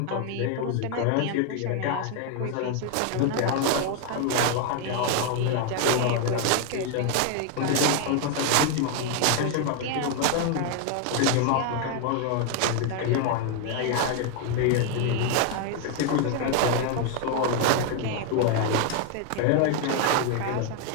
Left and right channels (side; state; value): both; different; correlation 0.01